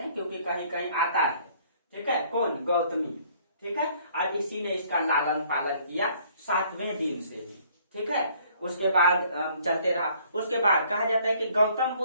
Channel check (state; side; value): inverted; both; correlation -0.60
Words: हैं, क्योंकि कहीं कहीं आता है। ठीक है, कौन? गौतमी। ठीक है, और इसी ने इसका लालन पालन किया 7वें दिन से ही। ठीक है, उसके बाद चलते रहा। उसके बाद कहा जाता है कि गौतम